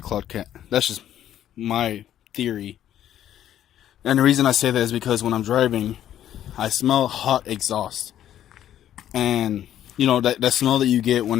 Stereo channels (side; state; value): right; quieter; 11.3 dB